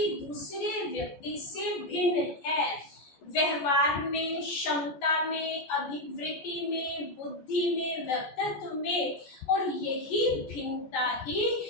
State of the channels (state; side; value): late; right; 14 ms